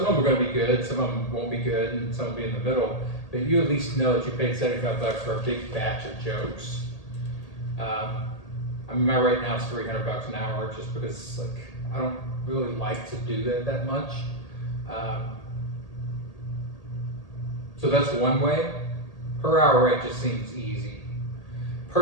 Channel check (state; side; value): late; right; 1.8 ms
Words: of them are going to be good, some of them won't be good, and some will be in the middle. But you at least know that you paid $75 for a big batch of jokes. My rate now is $300 an hour, just because I don't really like to do that much. So that's one way. Per hour rate just seems easy.